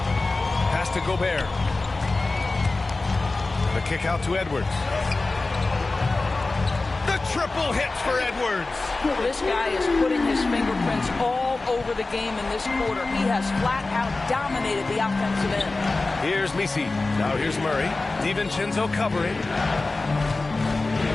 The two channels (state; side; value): quieter; right; 3.4 dB